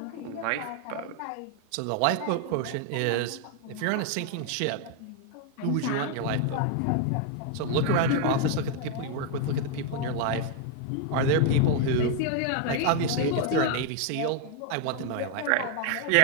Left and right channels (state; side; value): different; both; correlation 0.00